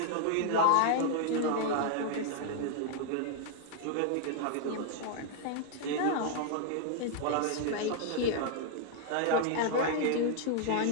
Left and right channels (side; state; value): both; different; correlation 0.00